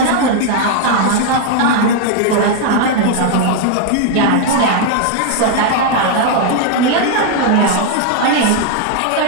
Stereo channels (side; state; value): both; different; correlation 0.00